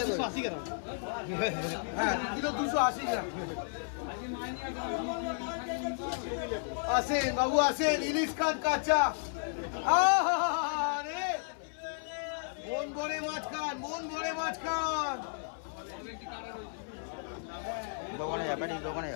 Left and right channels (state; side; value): silent; right; 56 dB below the other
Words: 280 গ্রাম। হ্যাঁ 2 কিলো 280 গ্রাম। আসেন বাবু আসেন, ইলিশ খান কাঁচা। আরে মন ভরে মাছ খান, দোকানে যা বেটি, দোকানে